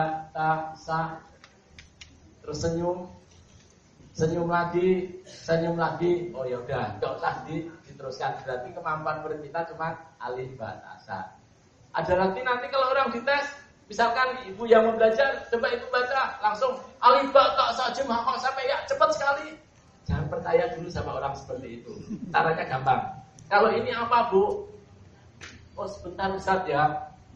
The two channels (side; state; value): both; identical; correlation 1.00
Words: ta, sa, terus senyum lagi, oh ya udah, nggak usah diteruskan. Berarti kemampuan murid kita cuma alif, ba, ta, sa. Ada lagi nanti kalau orang dites, misalkan ibu yang mau belajar, coba ibu baca langsung alif, ba, ta, sa, jum, hafal sampai ya cepat sekali. Jangan percaya dulu sama orang seperti itu. Caranya gampang. Kalau ini apa, Bu? Oh, sebentar Ustaz ya.